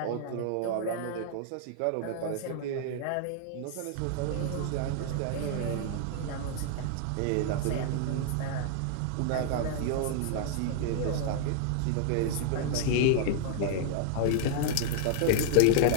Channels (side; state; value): both; different; correlation -0.01